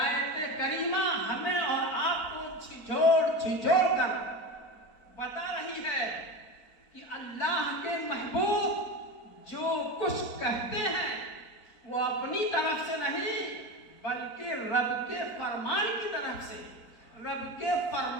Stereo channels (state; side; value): late; right; 4.2 ms